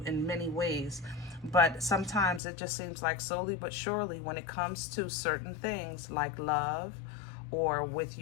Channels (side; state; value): right; drops out; at 2.4 s